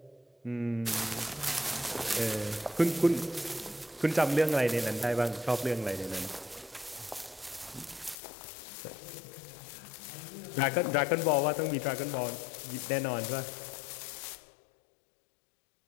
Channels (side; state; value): right; drops out; at 8.2 s